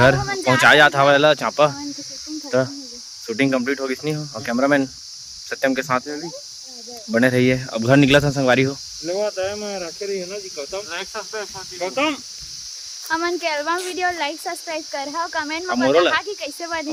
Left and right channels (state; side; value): identical; both; correlation 1.00